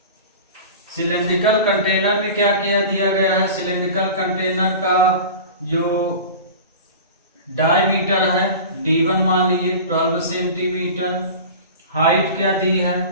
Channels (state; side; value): inverted; both; correlation -0.35